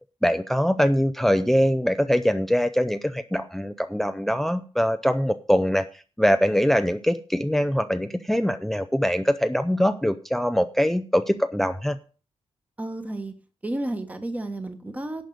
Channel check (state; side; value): normal; both; correlation 0.98